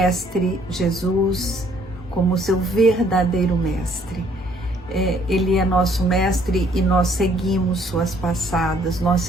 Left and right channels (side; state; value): both; normal; correlation 0.63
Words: Jesus como seu verdadeiro Mestre. Ele é nosso mestre e nós seguimos suas passadas, nós